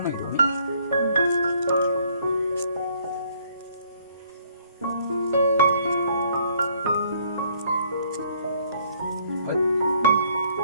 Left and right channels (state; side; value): inverted; both; correlation -0.62